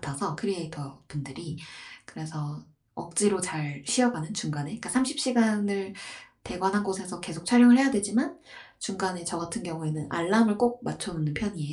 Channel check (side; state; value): both; identical; correlation 1.00